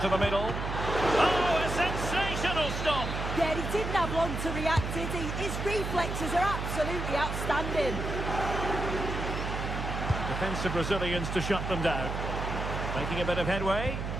the middle. Oh, a sensational stop! Yeah, he didn't have long to react, did he? His reflexes are absolutely outstanding. Defensive Brazilians to shut them down. Making a bit of headway.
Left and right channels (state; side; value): noise; right; hum, 4 dB below the sound